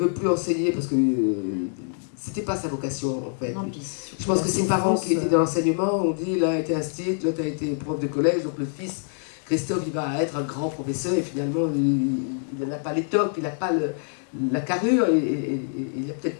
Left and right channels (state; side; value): silent; right; 62 dB below the other